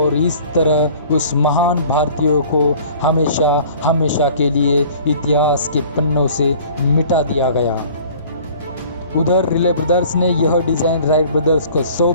इस तरह उस महान भारतीयों को हमेशा के लिए इतिहास के पन्नों से मिटा दिया गया। उधर रिले ब्रदर्स ने यह डिज़ाइन राइट ब्रदर्स को सौंप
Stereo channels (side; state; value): both; inverted; correlation -0.49